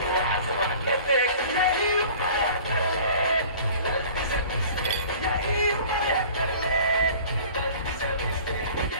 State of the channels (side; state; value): both; inverted; correlation -0.45